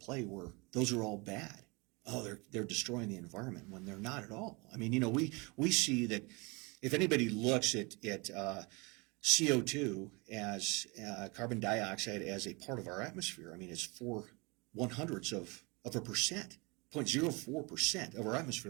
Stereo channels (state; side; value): quieter; left; 27.5 dB